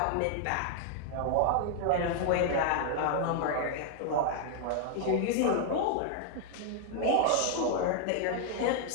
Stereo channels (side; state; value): both; different; correlation 0.00